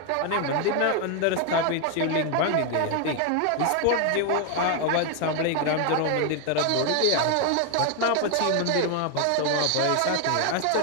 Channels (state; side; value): different; both; correlation 0.01